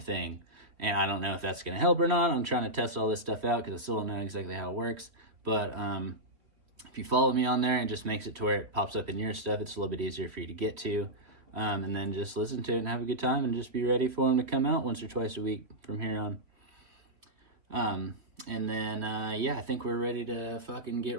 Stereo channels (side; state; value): left; late; 3.1 ms